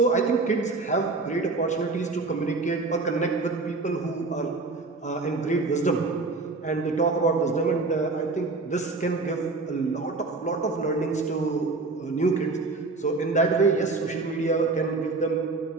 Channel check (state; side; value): quieter; left; 3.7 dB